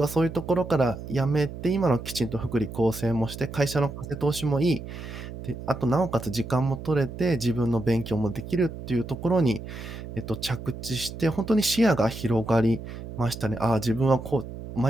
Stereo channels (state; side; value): noise; right; hum, 10 dB below the sound